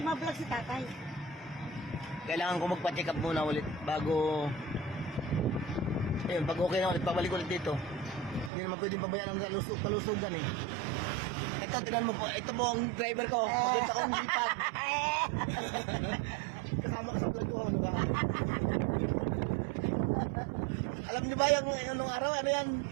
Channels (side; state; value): left; drops out; at 8.5 s